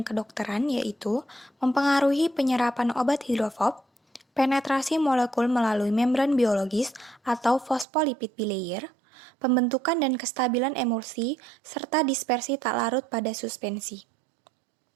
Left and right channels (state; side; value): drops out; left; at 7.9 s